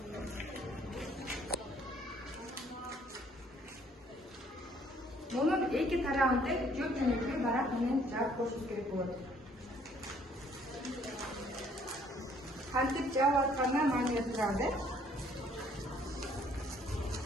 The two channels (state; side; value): normal; both; correlation 0.62